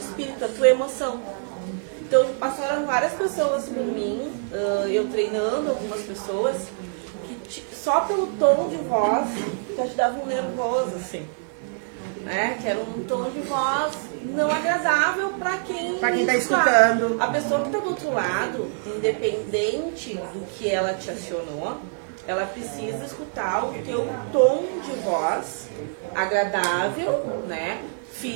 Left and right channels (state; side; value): silent; left; 62 dB below the other